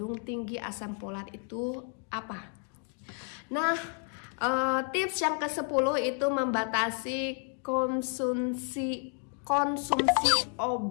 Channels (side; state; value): right; quieter; 39.5 dB